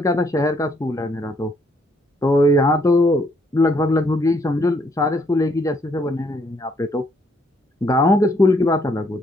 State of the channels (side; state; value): both; normal; correlation 0.69